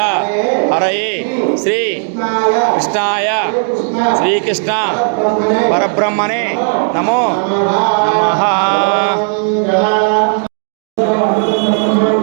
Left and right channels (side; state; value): left; silent; 60 dB below the other